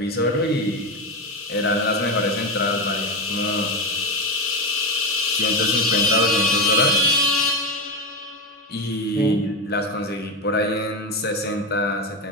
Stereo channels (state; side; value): normal; both; correlation 0.15